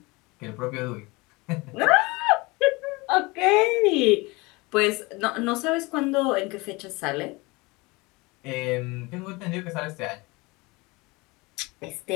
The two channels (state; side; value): quieter; right; 24.6 dB